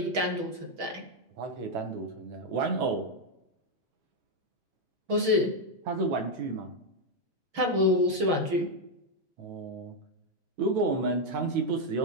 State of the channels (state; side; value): late; left; 6.2 ms